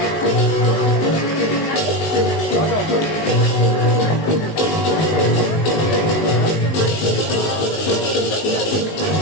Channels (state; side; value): late; right; 19 ms